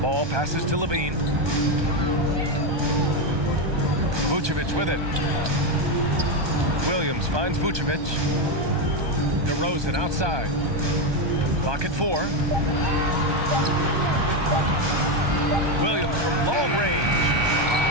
Ball passes to Levine. Vucevic with it. Williams finds Vucevic. DeRozan outside. Clock at 4. Williams from long range.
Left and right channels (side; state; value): left; late; 1.2 ms